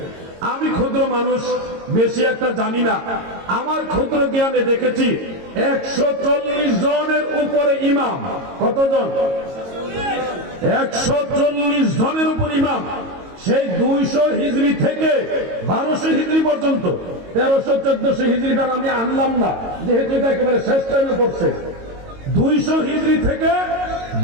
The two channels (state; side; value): late; left; 22 ms